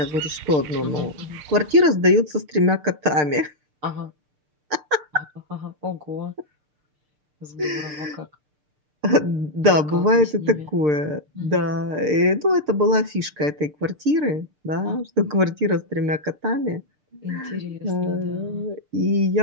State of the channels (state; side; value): late; left; 6.7 ms